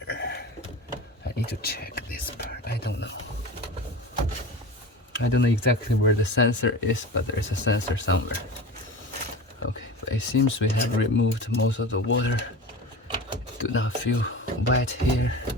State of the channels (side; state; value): both; normal; correlation 0.31